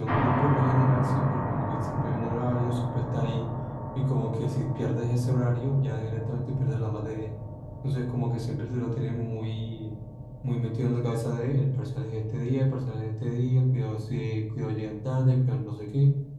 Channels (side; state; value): both; identical; correlation 1.00